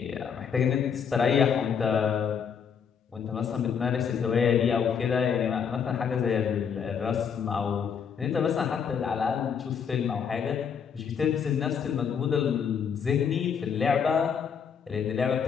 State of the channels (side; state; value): right; quieter; 7.1 dB